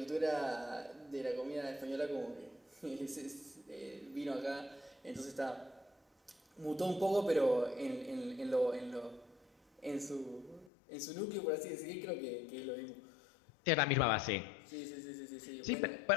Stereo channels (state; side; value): drops out; right; at 10.7 s